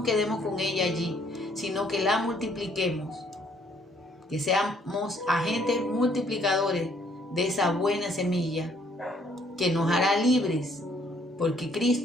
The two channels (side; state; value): both; normal; correlation 0.65